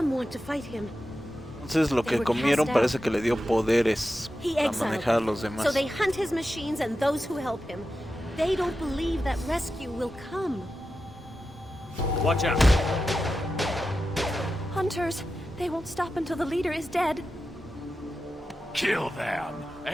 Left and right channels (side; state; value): both; normal; correlation 0.91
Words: want to fight him. Entonces lo que comieron parece que le dio poderes He para exiled manejar a them. los demás. So they hunt his machines and those who help him. They don't believe that rescue will come. Watch out! Hunters, they won't stop until the leader is dead. Kill them!